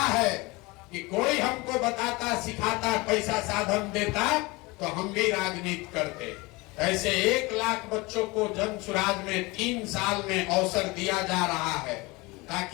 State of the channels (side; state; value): right; quieter; 24.1 dB